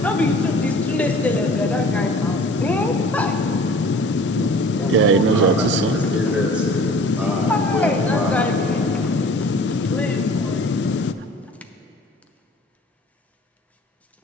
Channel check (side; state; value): both; normal; correlation 0.46